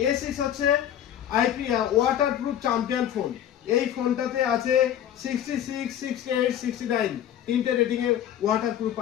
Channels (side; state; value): right; quieter; 10.5 dB